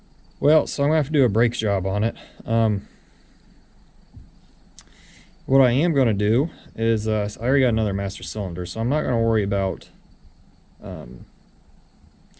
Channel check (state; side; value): identical; both; correlation 1.00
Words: Well, so I'm gonna have to do a brake job on it. What I am gonna do is, I already got another master cylinder, so I'm not gonna worry about